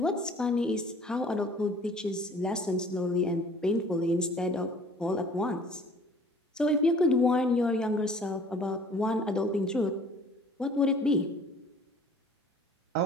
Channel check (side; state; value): both; normal; correlation 0.51